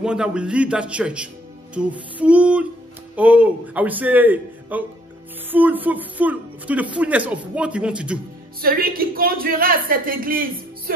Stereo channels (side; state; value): both; normal; correlation 0.65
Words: that will lead that church to full, oh, I would say, full, to the fullness of what He wants to do. Celui qui conduira cette église